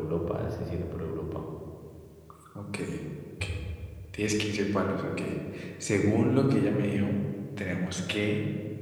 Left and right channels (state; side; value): identical; both; correlation 1.00